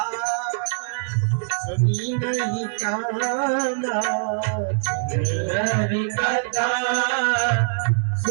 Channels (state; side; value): silent; left; digital silence